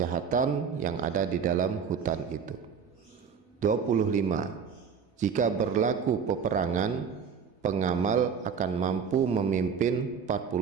yang ada di dalam hutan itu. 25. Jika berlaku peperangan, pengamal akan mampu memimpin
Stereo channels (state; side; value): quieter; left; 6.6 dB